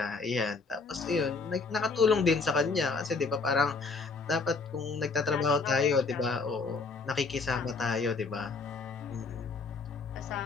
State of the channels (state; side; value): quieter; right; 4.3 dB